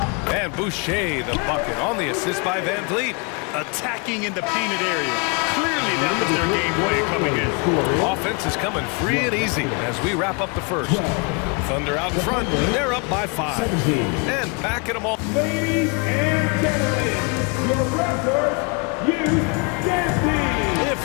And Boucher, the bucket on the assist by Van Vliet. Attacking in the painted area. Clearly that was their game plan coming in. Offense is coming free and easy as we wrap up the first. Thunder out in front. They're up by 5. And backing them all. Ladies and gentlemen, your record, If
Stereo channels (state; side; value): quieter; right; 32.8 dB